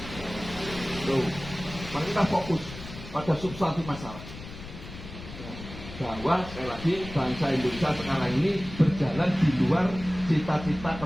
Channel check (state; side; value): noise; left; rumble, 13 dB below the sound